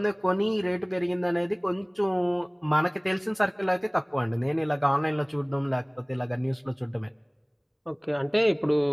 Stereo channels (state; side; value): identical; both; correlation 1.00